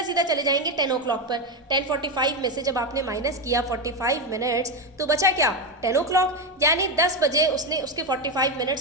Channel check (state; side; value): normal; both; correlation 0.11